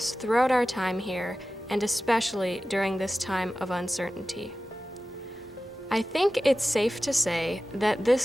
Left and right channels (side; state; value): both; normal; correlation 0.95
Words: throughout our time here, and especially during this time of uncertainty. I think it's safe to say that